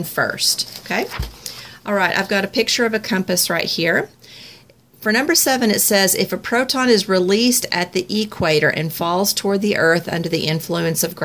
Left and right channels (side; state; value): both; identical; correlation 1.00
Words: first. Okay? All right, I've got a picture of a compass right here. For number 7, it says, if a proton is released at the equator and falls toward the Earth under the influence of